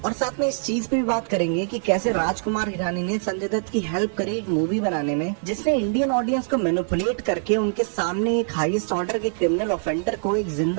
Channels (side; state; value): left; silent; digital silence